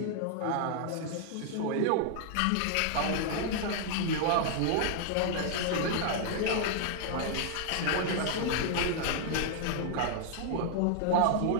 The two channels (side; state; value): both; different; correlation -0.01